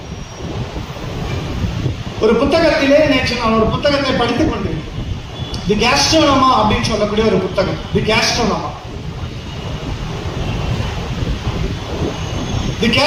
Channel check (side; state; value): both; identical; correlation 1.00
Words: ஒரு புத்தகத்திலே நேற்று நான் ஒரு புத்தகத்தை படித்துக் கொண்டேன். தி கேஸ்ட்ரோனோமா அப்படின்னு சொல்லக்கூடிய ஒரு புத்தகம். தி கேஸ்ட்ரோனோமா